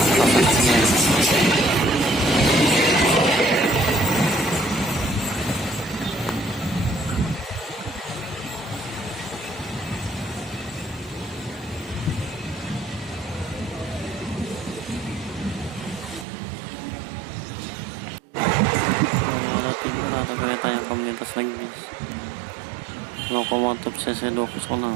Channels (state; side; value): drops out; left; at 16.2 s